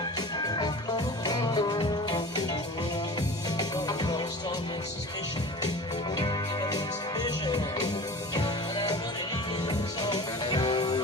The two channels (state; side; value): normal; both; correlation 0.38